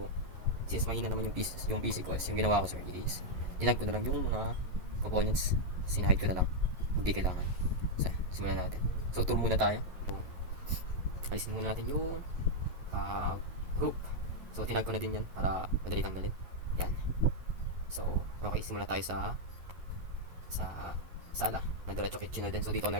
since mahina naman yung PC ko, yung ginawa ko sir is tinag ko na lang yung mga components. Sinahid ko na lang. Hindi kailangan. So simulan natin. So tour muna tayo. So, alisin muna natin yung group. So tinag ko na din yan para madali tanggalin. Yan. So okay, simula tayo sa sala na diretso kitchen na din. So dito ako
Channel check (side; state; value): left; late; 11 ms